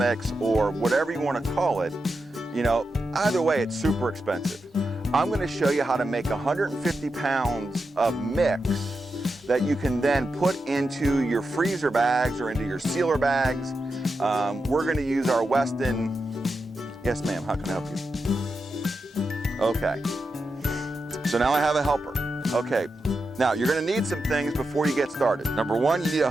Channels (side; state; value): both; normal; correlation 0.88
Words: or whatever you want to call it. You know, either way, it's super expensive. I'm going to show you how to make 150 pounds of mix that you can then put into your freezer bags or into your sealer bags. We're going to use our Weston. Yes, ma'am, how can I help you? Okay. So now I have a helper. Okay, now you're gonna need some things before you get started. Number one, you need a